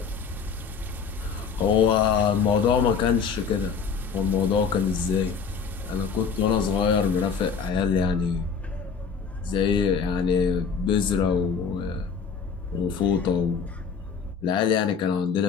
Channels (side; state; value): right; quieter; 6.0 dB